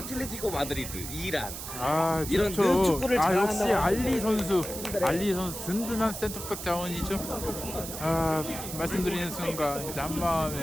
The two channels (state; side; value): noise; right; hiss, 8 dB below the sound